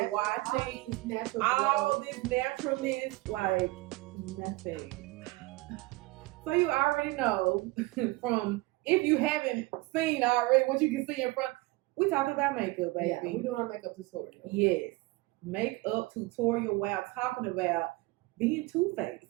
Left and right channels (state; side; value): quieter; left; 21.5 dB